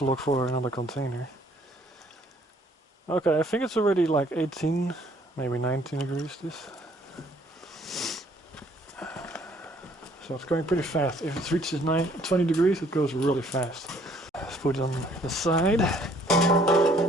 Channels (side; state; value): both; normal; correlation 0.61